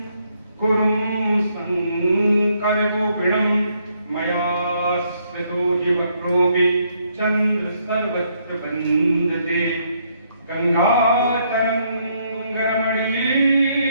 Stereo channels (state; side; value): inverted; both; correlation -0.72